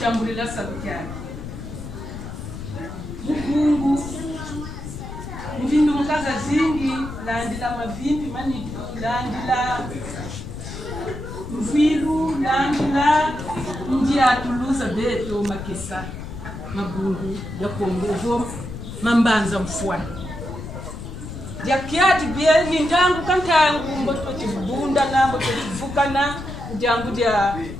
sabukyani mukungu mvindu mukaza zingi landila mavimbi manitu landila mvilu landila njia tuluza beto makesa mabungu ya kongo mambanza mfwani ya kiati bia ni ndangu kantangu mboto tibunda na mboto tivukana ndangu dia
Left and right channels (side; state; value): left; noise; rumble, 9 dB below the sound